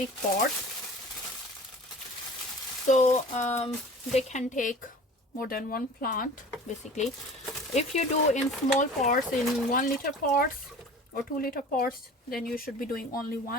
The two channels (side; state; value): both; normal; correlation 0.42